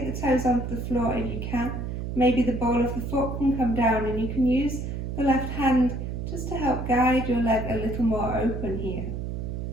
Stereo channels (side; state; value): right; noise; hum, 4 dB below the sound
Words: the toes off the floor if you can. Maybe the ball of the foot can come down and you can use the left hand just to help guide your leg a little more open here.